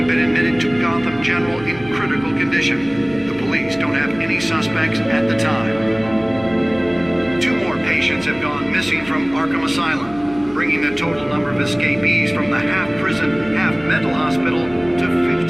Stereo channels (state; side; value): noise; left; hum, 20 dB below the sound